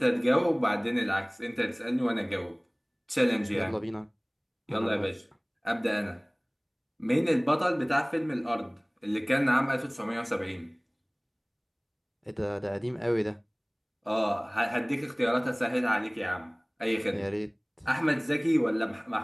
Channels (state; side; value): identical; both; correlation 1.00